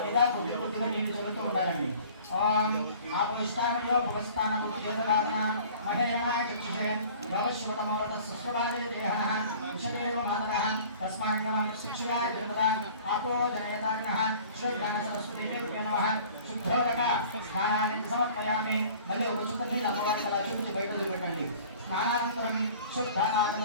మీద కొద్దిగా నీళ్లు చల్లుతూ ఉండాలండి. ఓం ఆపవిష్టానయో భువస్థానం ఉద్యోగదాన మహేరణాయ చక్షుషే యోగశివతమోరత సృష్టవాదే దేహః విషదేవ మాతరః తస్మాన్నం శిక్షయాయ జగదా ఆపో జనయతానః శ్రీజ్ఞాన సరస్వతీ దేవ్యే నమః. శుద్ధోదక స్నానాన్ని సమర్పయామి. మళ్ళీ ఒక చుక్క నీళ్ళు అమ్మవారికి అలా చూపించి బయట వదిలిపెట్టండి. స్నానానంతరం శుద్ధ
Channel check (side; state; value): both; inverted; correlation -0.47